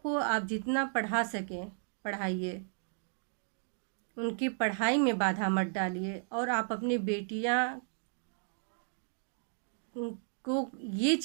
आप जितना पढ़ा सकें पढ़ाइए, उनकी पढ़ाई में बाधा मत डालिए। और आप अपनी बेटियां को ये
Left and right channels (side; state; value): left; silent; digital silence